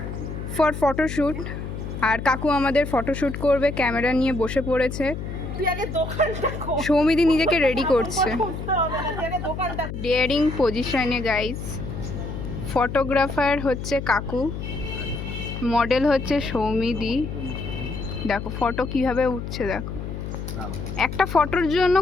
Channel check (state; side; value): noise; left; hum, 7 dB below the sound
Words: ফর ফটোশ্যুট, আর কাকু আমাদের ফটোশ্যুট করবে, ক্যামেরা নিয়ে বসে পড়েছে। সৌমিদি নিজেকে রেডি করছে ডেয়ারিং পজিশনে গাইস। ফটোগ্রাফার হচ্ছে কাকু, মডেল হচ্ছে সৌমিদি। দেখো ফটো কিভাবে উঠছে, দেখো একটা ফটোর জন্য